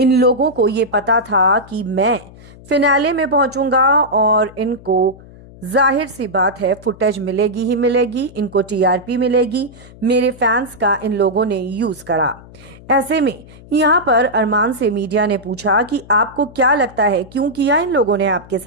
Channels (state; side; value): noise; left; hum, 21 dB below the sound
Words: लोगों को ये पता था कि मैं फिनाले में पहुंचूंगा और इनको जाहिर सी बात है फुटेज मिलेगी ही मिलेगी, इनको टीआरपी मिलेगी। मेरे फैंस का इन लोगों ने यूज करा। ऐसे में यहाँ पर अरमान से मीडिया ने पूछा कि आपको क्या लगता है क्यों किया इन लोगों ने आपके